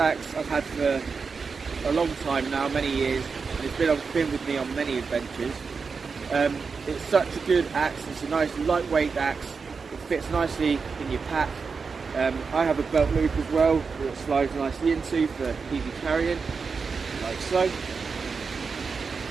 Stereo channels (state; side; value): quieter; left; 5.1 dB